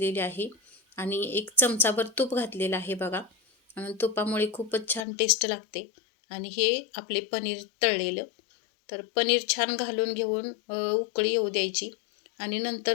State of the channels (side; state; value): right; drops out; at 5.0 s